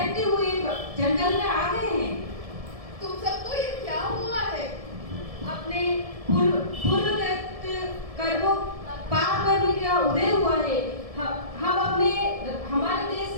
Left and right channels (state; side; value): late; left; 1.7 ms